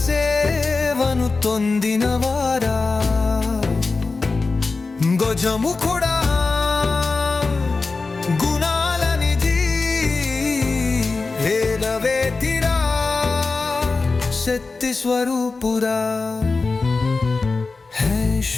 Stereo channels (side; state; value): right; quieter; 4.0 dB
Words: సేవను తొందినవారా, గజముఖుడా గుణాల నిధి, వేదవేతిరా శక్తి స్వరూపురా. హే